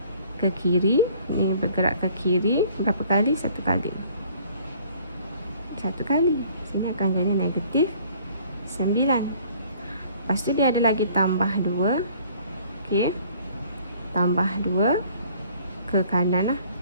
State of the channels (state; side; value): inverted; both; correlation -0.56